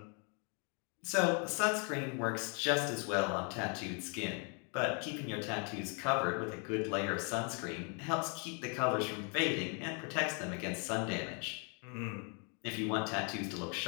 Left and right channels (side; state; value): right; quieter; 37.2 dB